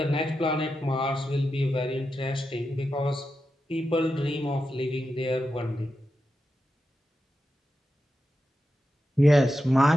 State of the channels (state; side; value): normal; both; correlation 0.89